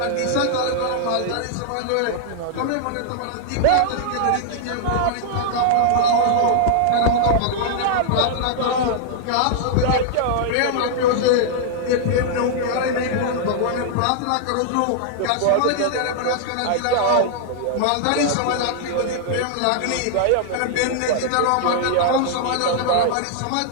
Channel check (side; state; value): both; different; correlation -0.01